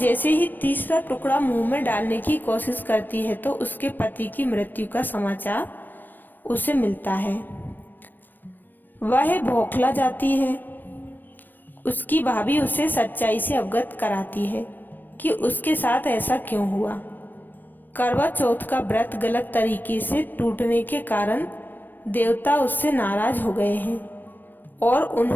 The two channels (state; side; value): late; right; 0.092 ms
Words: ही तीसरा टुकड़ा मुंह में डालने की कोशिश करती है तो उसके पति की मृत्यु का समाचार उसे मिलता है। वह बौखला जाती है। उसकी भाभी उसे सच्चाई से अवगत कराती है कि उसके साथ ऐसा क्यों हुआ। करवा चौथ का व्रत गलत तरीके से टूटने के कारण देवता उससे नाराज हो गए हैं और